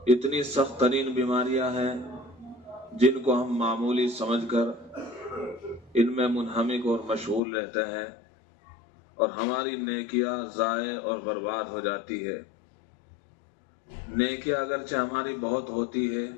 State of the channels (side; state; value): right; drops out; at 7.4 s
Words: इतनी सख्त तरीन बीमारियां हैं जिनको हम मामूली समझकर इनमें मुनहमिक और मशगूल रहते हैं और हमारी नेकियां ज़ाये और बर्बाद हो जाती है। नेकियां अगरचे हमारी बहुत होती है,